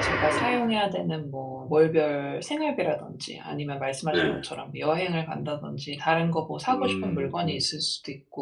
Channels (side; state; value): both; identical; correlation 1.00